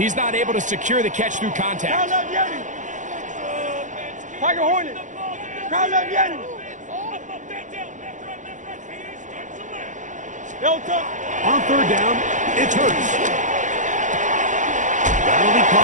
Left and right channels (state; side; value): late; left; 0.36 ms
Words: not able to secure the catch through contact. Crowd up, Yeti. Tiger Hornet. Crowd up, Yeti. Delta. On third down, it's Hurts. That'll be